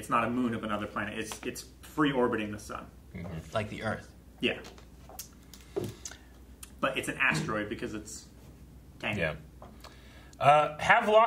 not a moon of another planet. It's free orbiting the sun. Mm-hmm. Like the Earth. Yeah. But it's an asteroid because it's tiny. Yeah.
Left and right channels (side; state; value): both; identical; correlation 1.00